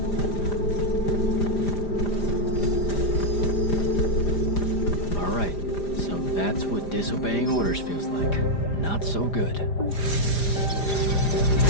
That's what disobeying orders feels like. Not so good.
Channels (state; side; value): late; right; 5.0 ms